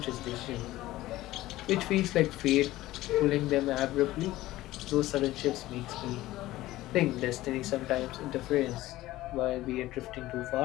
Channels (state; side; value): quieter; right; 16.5 dB